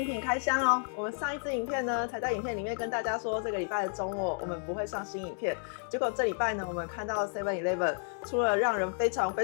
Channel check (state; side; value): silent; right; 57 dB below the other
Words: 品开箱哦。我们上一支影片呢，才在影片里面跟大家说，这个礼拜的周末我们不会上新影片。结果这礼拜呢，我们看到 7-Eleven 出了让人非常